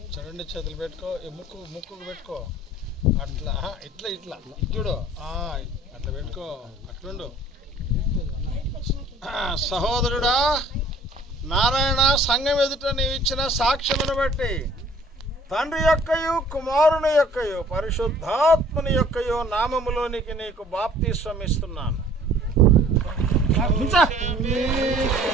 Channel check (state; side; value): normal; both; correlation 0.54